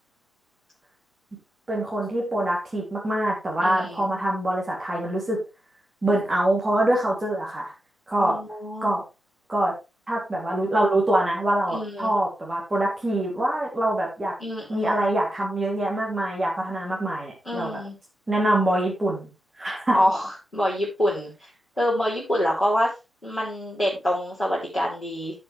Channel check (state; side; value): normal; both; correlation 0.89